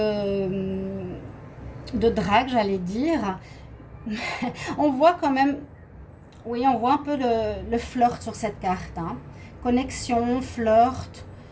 drague, j'allais dire. On voit quand même, oui, on voit un peu le flirt sur cette carte, hein. Connexion, flirt,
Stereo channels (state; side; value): identical; both; correlation 1.00